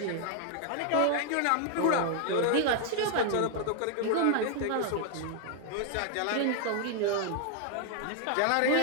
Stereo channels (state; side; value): different; both; correlation 0.00